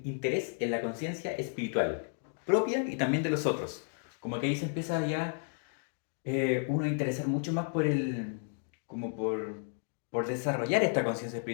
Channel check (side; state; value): right; silent; 56 dB below the other